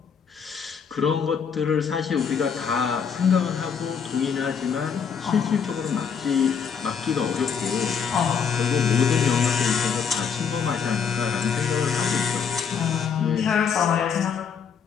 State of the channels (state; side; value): quieter; right; 6.7 dB